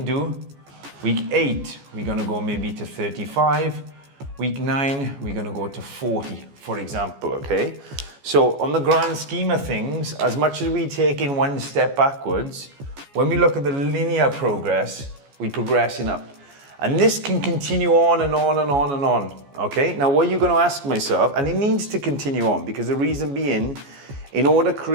do. Week 8, we're gonna go maybe to 35. Week 9, we're gonna go to 40, for example, okay? So on the grand scheme of things, as much as we take in 1 step backwards, when we look at the linear progress, we're progressing up. And this can continue on and on and on and on, okay? Now what you're gonna ask myself, and it needs to continue on, because the reason being, in order to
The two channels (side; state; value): left; late; 14 ms